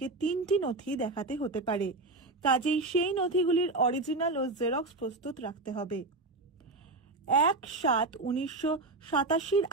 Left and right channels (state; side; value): quieter; left; 3.2 dB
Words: 3টি নথি দেখাতে হতে পারে, কাজেই সেই নথিগুলির অরিজিনাল ও জেরক্স প্রস্তুত রাখতে হবে। 1/7/1987